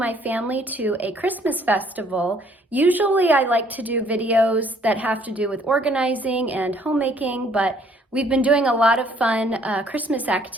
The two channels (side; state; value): both; normal; correlation 0.62